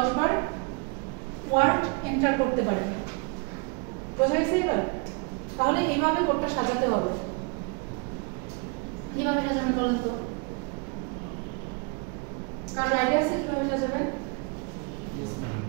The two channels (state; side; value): quieter; left; 33.2 dB